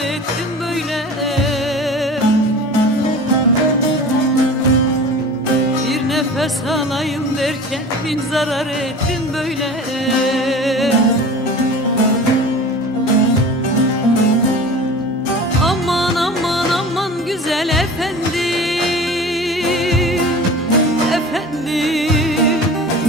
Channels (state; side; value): normal; both; correlation 0.38